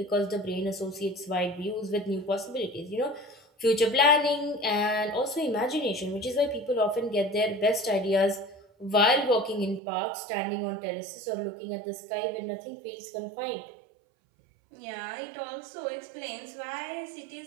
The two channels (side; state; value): left; drops out; at 9.8 s